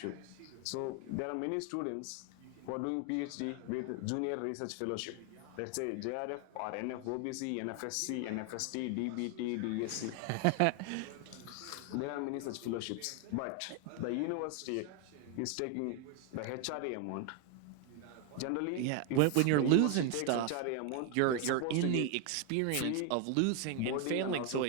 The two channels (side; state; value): both; different; correlation 0.01